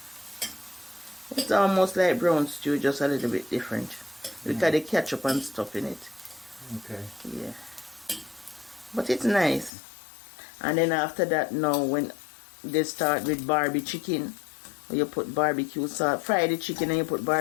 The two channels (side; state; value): right; drops out; at 9.7 s